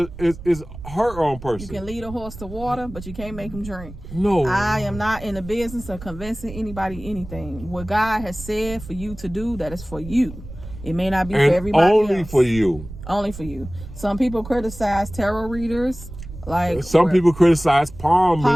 her own person. You can lead a horse to water, but you can't make him drink. No. I am not in the business of convincing anybody anything. What God has said for you to do, that is for you. It may not be for everybody only else. for you. Only for you. Some people criticize tarot readers. Some people criticize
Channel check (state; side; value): noise; right; rumble, 14 dB below the sound